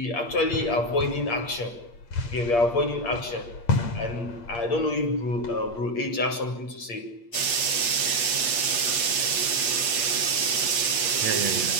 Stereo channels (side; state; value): right; late; 8.2 ms